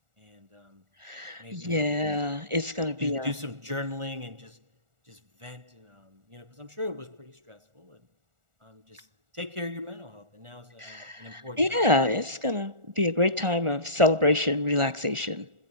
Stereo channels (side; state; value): left; late; 1.4 ms